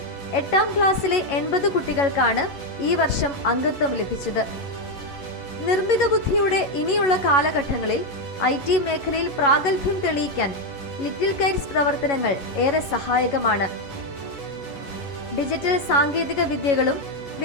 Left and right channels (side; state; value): right; late; 11 ms